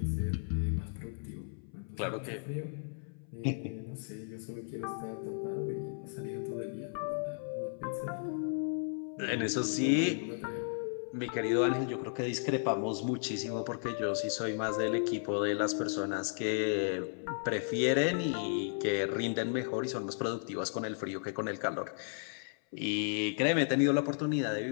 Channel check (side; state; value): right; silent; 55 dB below the other